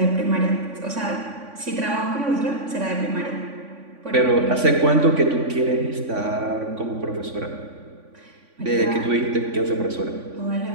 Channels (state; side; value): late; left; 3.5 ms